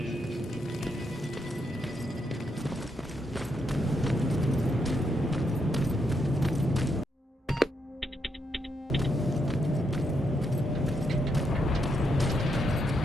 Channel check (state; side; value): normal; both; correlation 0.80